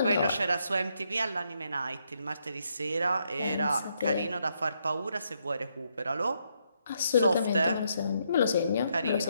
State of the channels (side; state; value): both; inverted; correlation -0.76